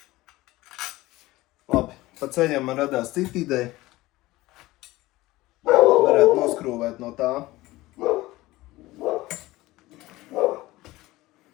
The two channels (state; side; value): quieter; right; 18.7 dB